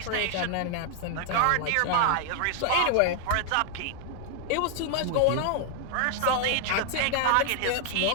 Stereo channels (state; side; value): different; both; correlation 0.00